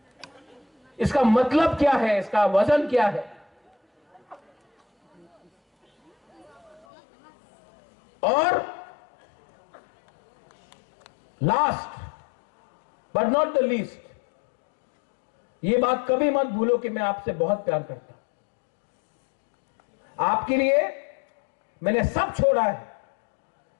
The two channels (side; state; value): right; drops out; at 6.9 s